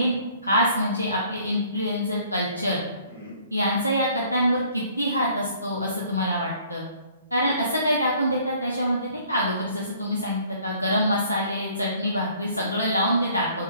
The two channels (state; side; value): inverted; both; correlation -0.57